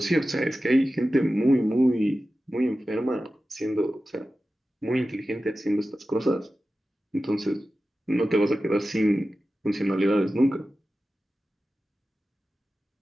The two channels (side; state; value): both; normal; correlation 0.94